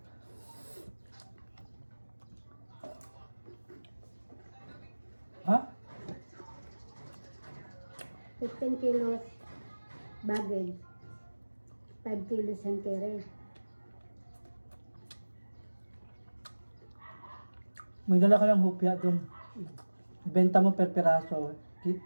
Ha? 15 kilos baggage. 5 kilos hand carry. May dala ka lang hupya doon. Ibenta mo per piraso.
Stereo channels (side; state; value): both; inverted; correlation -1.00